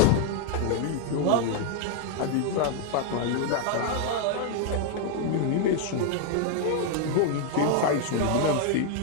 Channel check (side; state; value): both; different; correlation 0.00